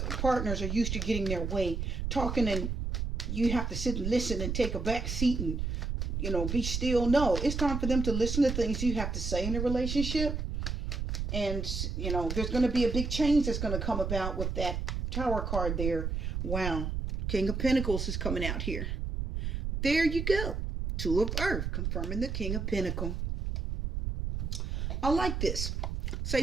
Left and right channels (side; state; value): right; noise; rumble, 2 dB below the sound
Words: partners are used to getting their way, talking, and you have to sit and listen and take a back seat and, be still. No, it's time for them to listen to things you have to say in a relationship. And, there's going to be a big change that's going to come about with that Tower card there. Wow. King of Pentacles is coming out here. There you go. Two of Earth, confirming the King of Pentacles. I like this. Say